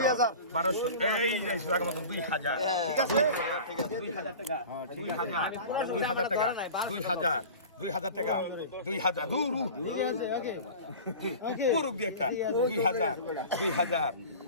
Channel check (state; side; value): inverted; both; correlation -0.37